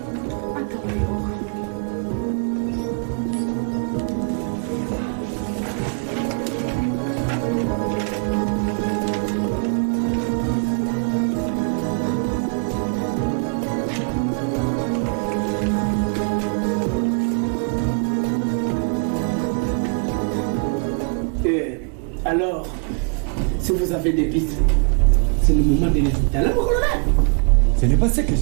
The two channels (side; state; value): left; quieter; 36.3 dB